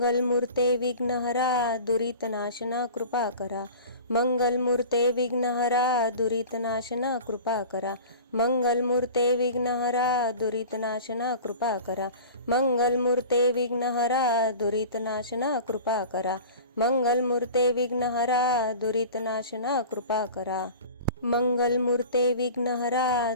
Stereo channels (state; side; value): inverted; both; correlation -0.38